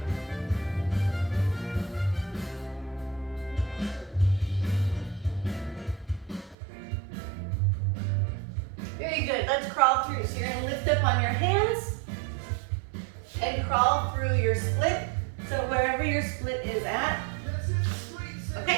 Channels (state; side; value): drops out; left; at 6.6 s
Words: Very good, let's crawl through. So you're gonna lift up on your hands and crawl through your split. So wherever your split is at,